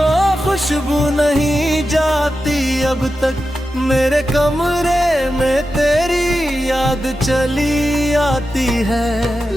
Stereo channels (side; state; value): both; normal; correlation 0.91